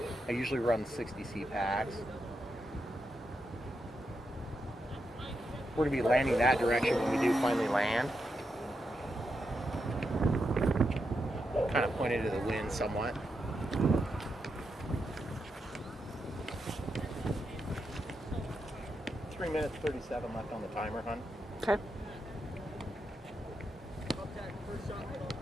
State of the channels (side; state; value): both; normal; correlation 0.85